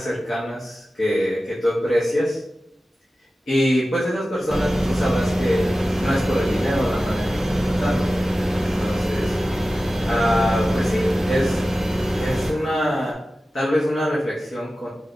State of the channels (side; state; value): both; normal; correlation 0.95